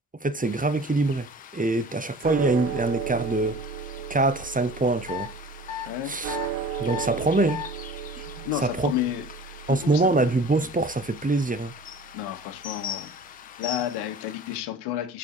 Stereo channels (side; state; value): both; normal; correlation 0.43